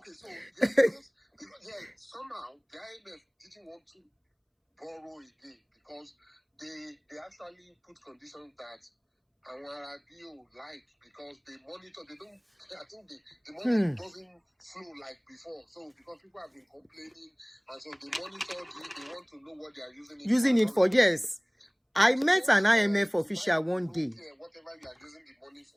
so somehow the IMF didn't want to borrow again because they actually put conditions that our BO like, because they monitor, I think the money doesn't flow like before. So because people have been complaining, and so they monitor they want to know what they are using it for. Yes. I met an IMF official one day. Whatever you are using the money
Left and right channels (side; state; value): both; identical; correlation 1.00